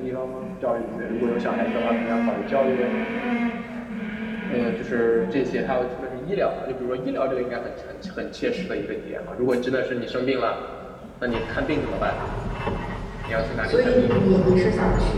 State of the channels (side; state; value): both; identical; correlation 1.00